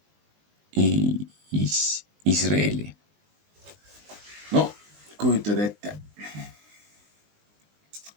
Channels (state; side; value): late; left; 19 ms